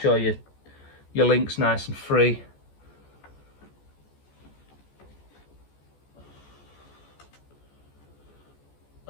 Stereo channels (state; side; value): late; right; 14 ms